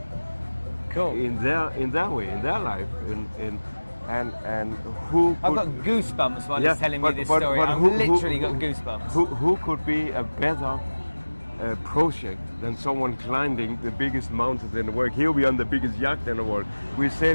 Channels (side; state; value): both; inverted; correlation -1.00